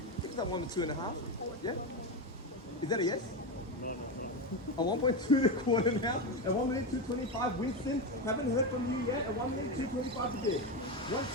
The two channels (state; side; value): normal; both; correlation 0.14